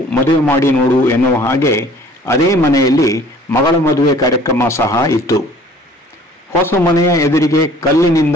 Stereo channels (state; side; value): normal; both; correlation 0.52